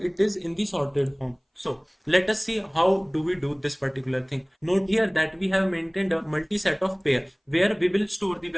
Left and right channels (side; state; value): both; identical; correlation 1.00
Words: it is in the sorted form. So let us see how do we do this particular thing. Note here that we have maintained a multi-set of pair where we will store the